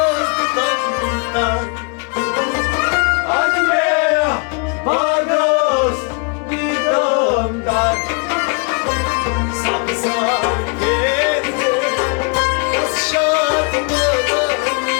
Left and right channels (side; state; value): right; quieter; 34.5 dB